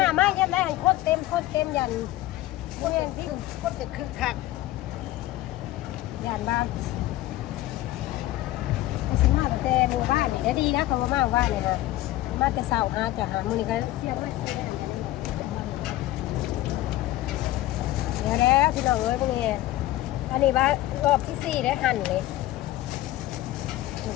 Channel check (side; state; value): right; quieter; 15.8 dB